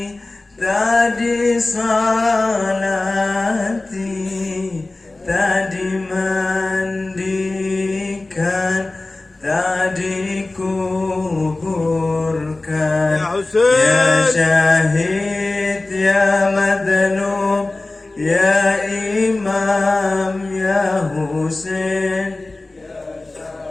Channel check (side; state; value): right; quieter; 3.0 dB